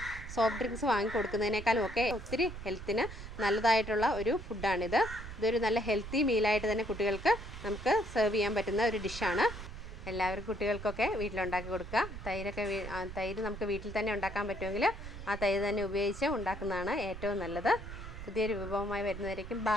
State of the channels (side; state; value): right; noise; rumble, 10 dB below the sound